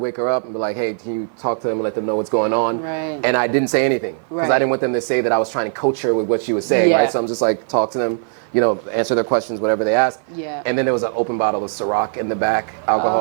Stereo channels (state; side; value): silent; left; 55 dB below the other